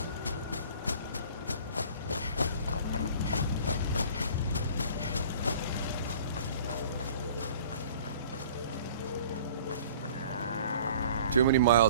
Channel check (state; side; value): inverted; both; correlation -0.48